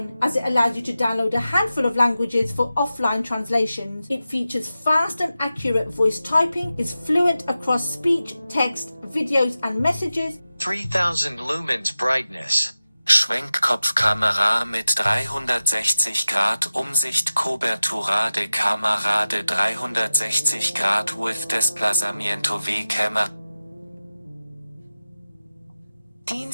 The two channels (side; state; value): both; inverted; correlation -0.94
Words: as it allows you to download a handful of languages for offline translations. It features fast and accurate voice typing, is fluent across speech, text, videos and messages. 3000 lumens brightness. Schwenkkopfkamera mit 360 Grad Umsicht Cobertura de cámara de 360 Grad with desplazamiento v camera.